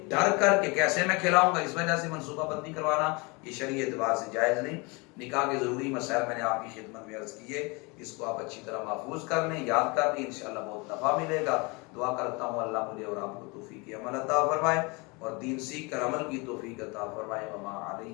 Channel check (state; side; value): quieter; right; 28.0 dB